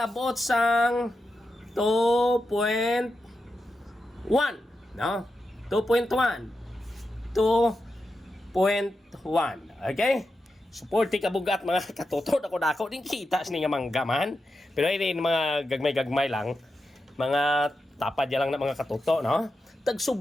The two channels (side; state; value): both; normal; correlation 0.89